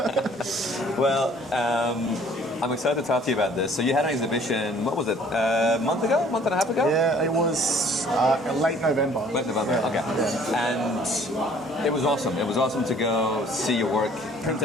Well, I'm excited to talk to you about this. So you had an exhibition, what was it, a month and a half ago? Yeah, it was late November. Late November, yeah. Okay. Yeah. And it was awesome. It was awesome to go see your work, print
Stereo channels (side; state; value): both; normal; correlation 0.55